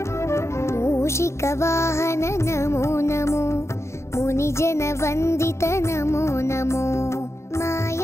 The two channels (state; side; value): late; right; 0.13 ms